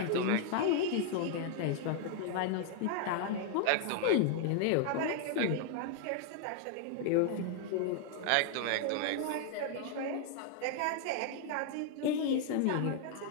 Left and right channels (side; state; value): both; different; correlation 0.00